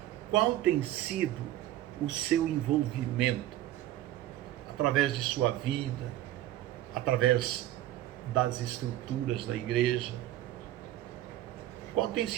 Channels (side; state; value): left; quieter; 14.0 dB